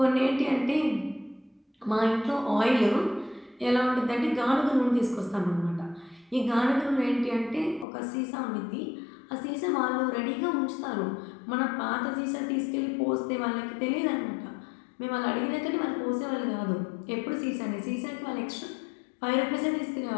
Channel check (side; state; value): right; drops out; at 7.9 s